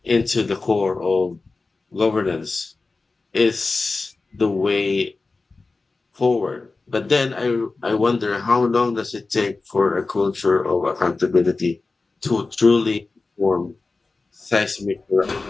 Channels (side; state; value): right; quieter; 3.7 dB